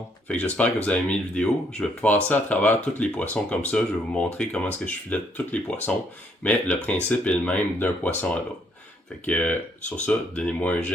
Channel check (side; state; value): both; normal; correlation 0.69